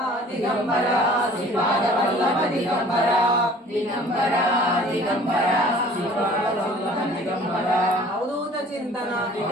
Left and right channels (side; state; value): both; normal; correlation 0.50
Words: దిగంబర శ్రీపాద వల్లభ దిగంబర దిగంబర దిగంబర శ్రీపాద వల్లభ దిగంబర అవధూత చింతన